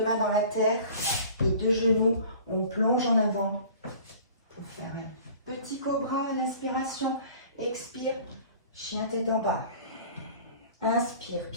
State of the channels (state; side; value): inverted; both; correlation -0.46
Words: mains dans la terre, les deux genoux, on plonge en avant pour faire un petit cobra à l'inspiration. Expire, chien tête en bas. Inspire,